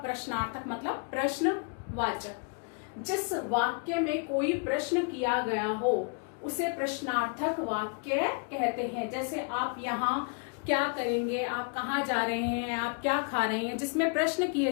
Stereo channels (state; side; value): quieter; right; 38.6 dB